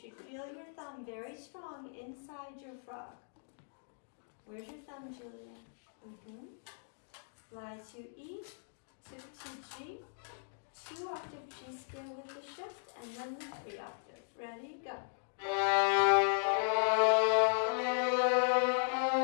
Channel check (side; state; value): right; silent; digital silence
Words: feel your thumb very strong inside your frog. Where's your thumb, Julia? Fly to E, tip to G, 2 octave G scale with the shift, and then the 3 octave. Ready, go.